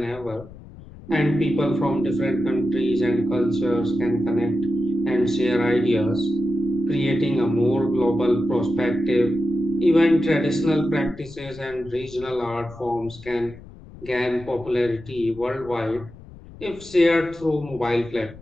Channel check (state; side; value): noise; left; rumble, 18 dB below the sound